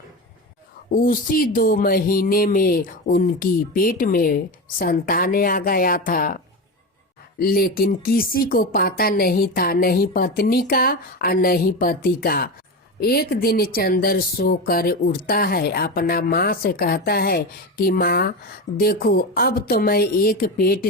उसी 2 महीने में उनकी पेट में संतान आ गया था, लेकिन किसी को पता नहीं था, नहीं पत्नी का और नहीं पति का। एक दिन चंदर सोकर उठता है, अपना माँ से कहता है कि माँ देखो, अब तो मैं एक पेट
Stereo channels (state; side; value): normal; both; correlation 0.21